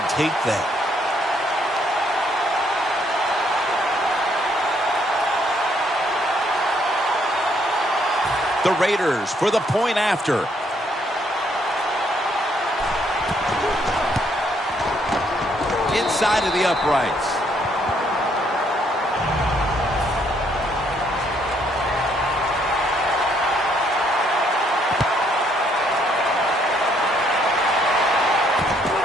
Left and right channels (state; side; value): normal; both; correlation 0.69